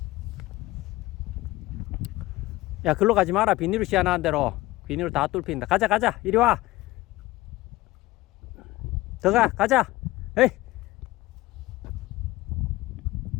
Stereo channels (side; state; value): right; quieter; 18.7 dB